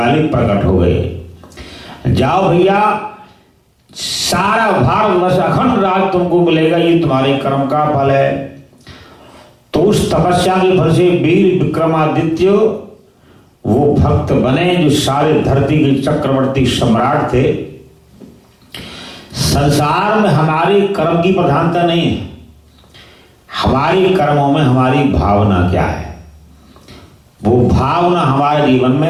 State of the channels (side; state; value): both; identical; correlation 1.00